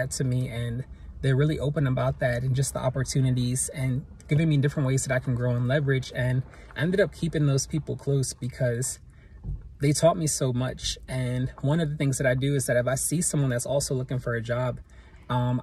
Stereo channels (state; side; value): identical; both; correlation 1.00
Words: to me, and they're really open about that and just the opportunities and giving me different ways that I can grow and leverage. And I ended up keeping those people close because they taught me so much. And one of the things that I do is that if I see someone that's also looking for a job,